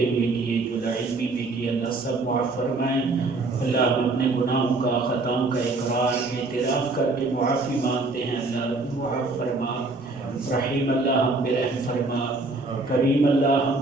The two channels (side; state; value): left; quieter; 3.4 dB